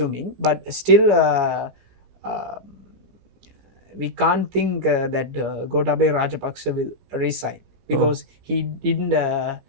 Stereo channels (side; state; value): left; late; 17 ms